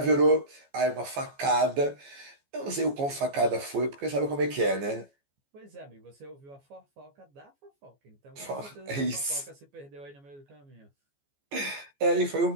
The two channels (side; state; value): left; late; 14 ms